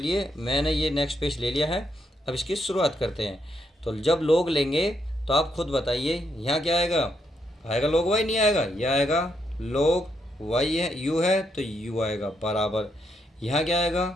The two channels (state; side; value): normal; both; correlation 0.78